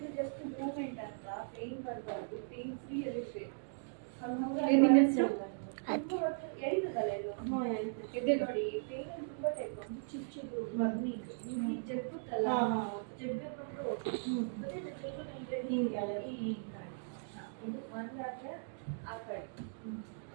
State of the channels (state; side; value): silent; left; digital silence